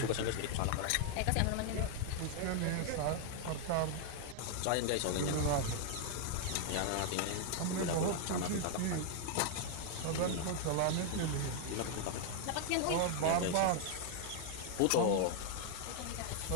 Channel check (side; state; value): both; different; correlation 0.00